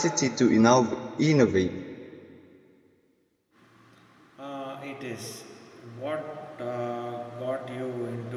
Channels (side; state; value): both; identical; correlation 1.00